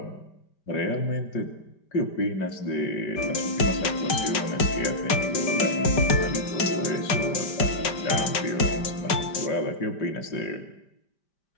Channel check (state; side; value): late; right; 5.1 ms